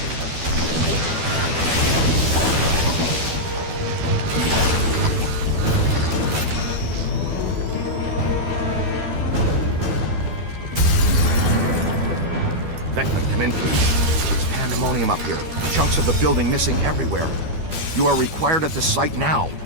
Venkman, come in, please. It's pandemonium up here. Chunks of the building missing everywhere. You are required at the site now.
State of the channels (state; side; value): late; left; 12 ms